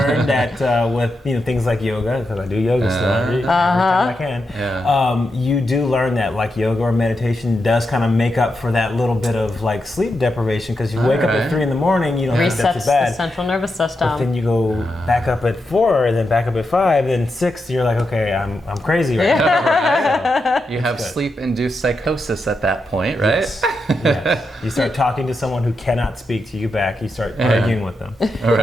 that with things like yoga, because I do yoga still every time I can. Yeah. You do learn that like yoga or meditation does kind of make up for that little bit of like sleep deprivation, because you wake up at 3 in the morning, you don't think that's Resets too bad. the central nervous But system. then you go back up at 4, and then back up at 5, then 6. You're like, okay, I'm crazy right now. You have sleep-induced psychosis at that point, right? Yes. You start talking to someone who cannot speak to you back. You start arguing with them.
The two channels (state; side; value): normal; both; correlation 0.86